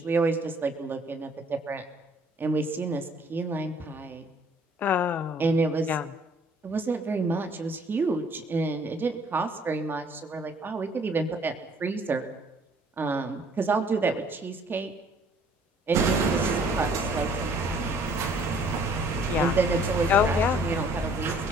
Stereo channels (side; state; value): both; normal; correlation 0.59